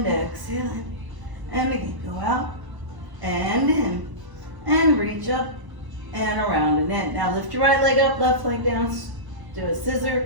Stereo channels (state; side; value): late; left; 1.0 ms